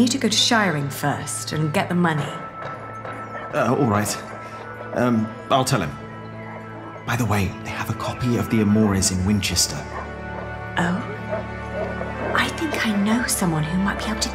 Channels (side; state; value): both; identical; correlation 1.00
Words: to go to shiring first and get the money. All right. I'll tell him. By the way, they have a copy of the Amores in Winchester. Oh? I think I know someone who might be able to